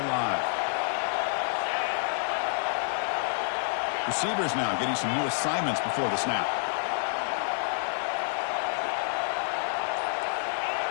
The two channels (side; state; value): right; silent; digital silence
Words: Receivers now getting some new assignments before the snap.